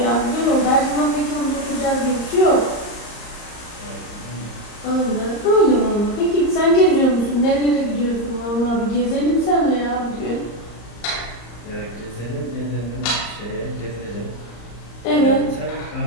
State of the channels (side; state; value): right; late; 34 ms